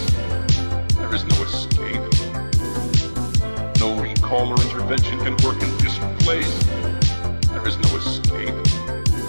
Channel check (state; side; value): inverted; both; correlation -1.00